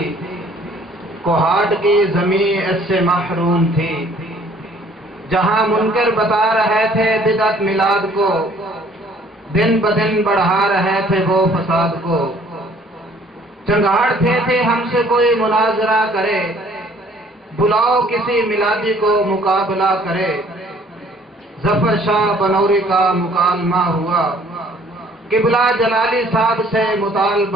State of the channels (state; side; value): normal; both; correlation 0.58